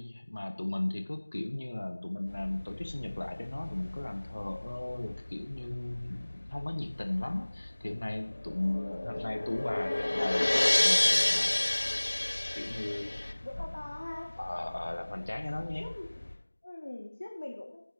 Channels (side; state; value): both; inverted; correlation -1.00